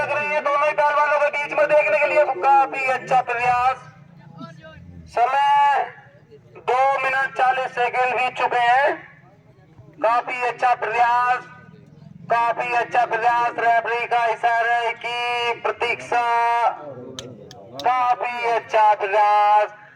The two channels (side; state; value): both; identical; correlation 1.00